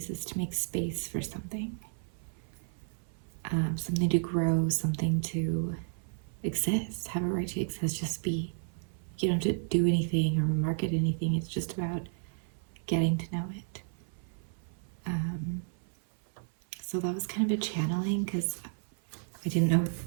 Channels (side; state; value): left; silent; 56 dB below the other